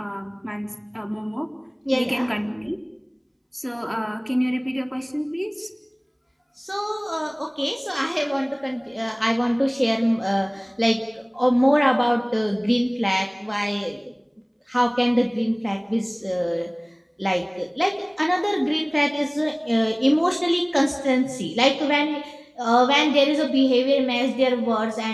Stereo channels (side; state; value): both; identical; correlation 1.00